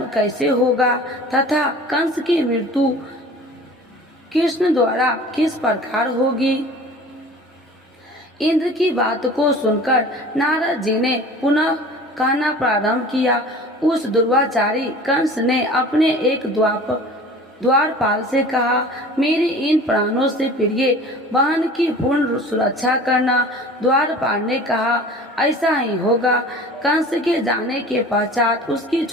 कैसे होगा तथा कंस की मृत्यु कृष्ण द्वारा किस प्रकार होगी। इंद्र की बात को सुनकर नारद जी ने पुनः कहना प्रारंभ किया। उस दुर्वाचारी कंस ने अपने एक द्वारपाल से कहा, मेरी इन प्राणों से प्रिय बहन की पूर्ण सुरक्षा करना। द्वारपाल ने कहा, ऐसा ही होगा। कंस के जाने के पश्चात उसकी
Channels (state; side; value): normal; both; correlation 0.42